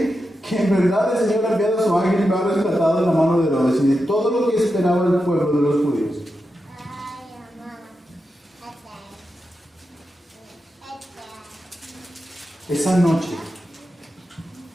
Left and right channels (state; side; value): normal; both; correlation 0.89